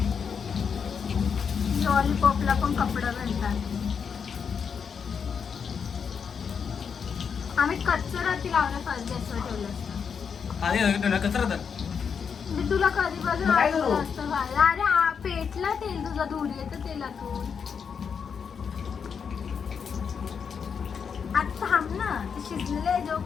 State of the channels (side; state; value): right; quieter; 6.6 dB